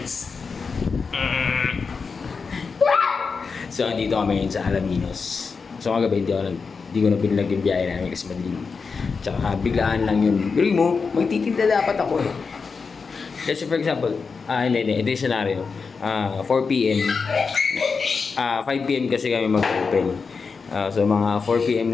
So, andito kami ngayon sa Alaminos. So, kagabi, hindi ko na pinilag yung biyahe namin kasi madilim. Tsaka, biglaan lang yun. Pero mo, magtitinda dapat ako eh. Kasi for example, hindi, ito yung scenario. 4 p.m. 5 p.m. kasi kami mag-open. So, mga 4 p.m.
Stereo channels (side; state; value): right; quieter; 5.0 dB